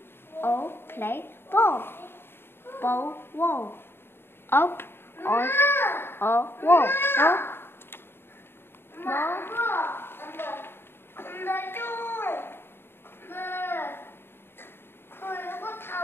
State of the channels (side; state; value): right; late; 0.11 ms